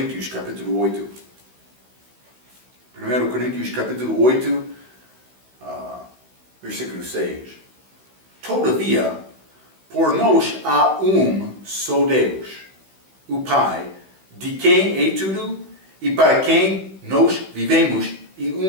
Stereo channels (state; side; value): late; left; 16 ms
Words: capítulo 8. 1 Coríntios capítulo 8, versículo 6. Todavia, por nós há só Deus, o Pai, de quem é tudo e para quem nós vivemos,